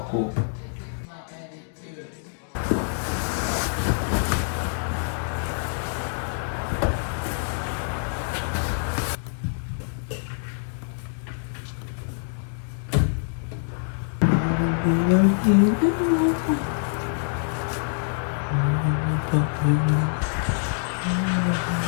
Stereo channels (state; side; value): silent; right; 61 dB below the other